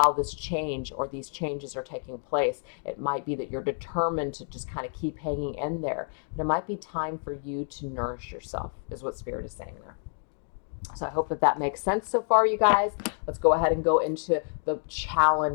this change or these changes are taking place, it might be that you're determined to just kind of keep hanging in there. But it might be time for you to nourish yourself, is what Spirit is saying there. So I hope that makes sense so far, you guys. Let's go ahead and go into the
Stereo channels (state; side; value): silent; right; digital silence